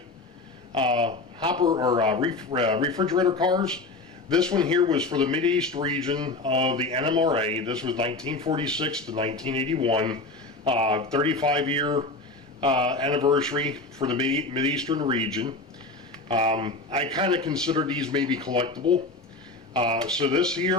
hopper or refrigerator cars. This one here was for the Mideast region of the NMRA. This was 1946 to 1981, 35-year anniversary for the Mideastern region. I kind of consider these maybe collectible. So this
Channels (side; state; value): right; quieter; 3.2 dB